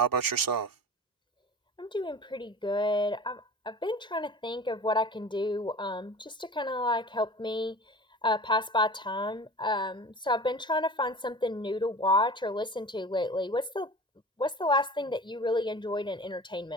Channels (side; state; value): both; normal; correlation 0.38